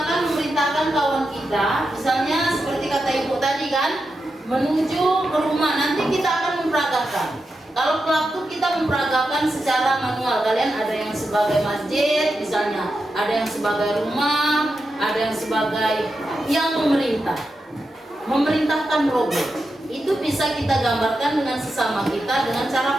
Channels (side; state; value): both; normal; correlation 0.88